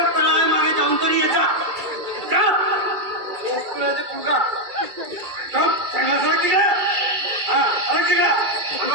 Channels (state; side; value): late; left; 2.3 ms